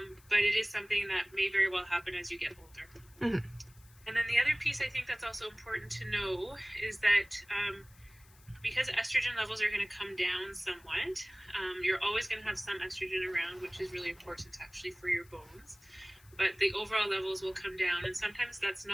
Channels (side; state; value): left; noise; hiss, 27 dB below the sound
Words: But it is something that may very well happen as you get older. Mm-hmm. And then the other piece I think that's also important to know is that because estrogen levels are going to come down somewhat, you're always going to have some estrogen around, which is really important actually for your bones. But the overall levels will come down, and sometimes that's